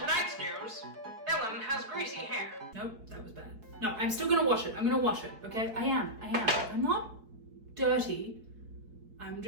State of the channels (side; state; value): left; late; 4.7 ms